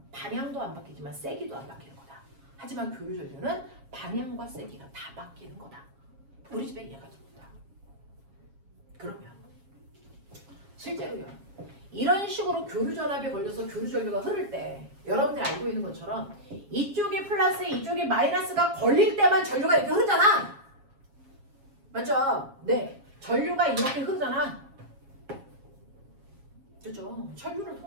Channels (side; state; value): left; late; 7.3 ms